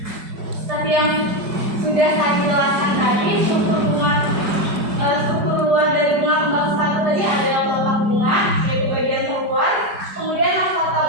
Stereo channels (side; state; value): left; late; 4.9 ms